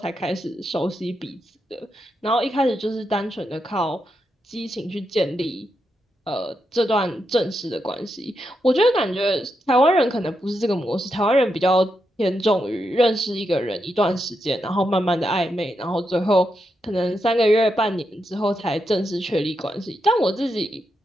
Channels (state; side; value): normal; both; correlation 0.84